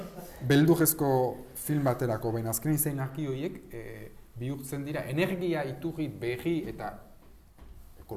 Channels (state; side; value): identical; both; correlation 1.00